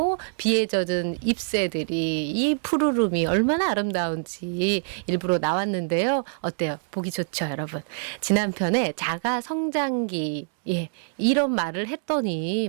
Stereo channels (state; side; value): silent; left; digital silence